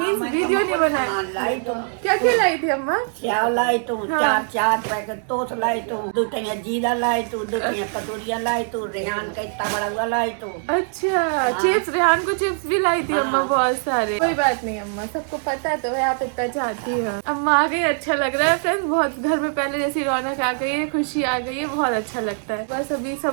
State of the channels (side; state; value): left; silent; 60 dB below the other